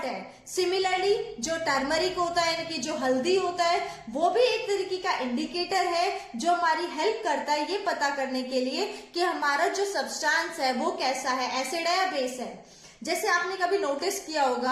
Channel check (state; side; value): identical; both; correlation 1.00